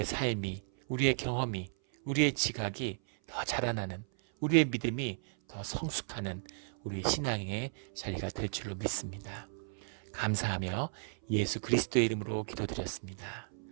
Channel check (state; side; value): silent; left; 55 dB below the other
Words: 삶이, 우리의 경험이, 우리의 지각이 더 자라나는, 우리의 믿음이 더 성숙하는 우리 신앙의 자리가 될 줄로 믿습니다. 감사하며 예수 그리스도의 이름으로 기도드렸습니다.